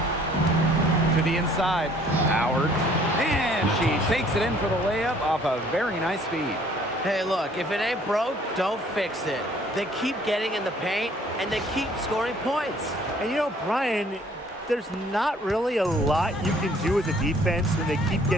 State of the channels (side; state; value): both; normal; correlation 0.58